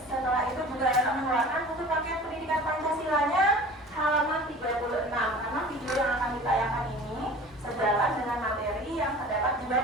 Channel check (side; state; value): both; normal; correlation 0.42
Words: Setelah itu juga akan mengeluarkan buku paket pendidikan Pancasilanya halaman 36, karena video yang akan ditayangkan ini sejalan dengan materi yang terdapat di